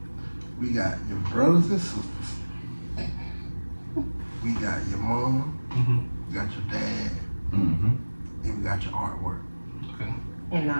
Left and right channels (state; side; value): inverted; both; correlation -1.00